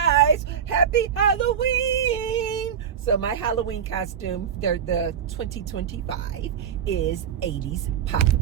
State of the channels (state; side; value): quieter; left; 8.0 dB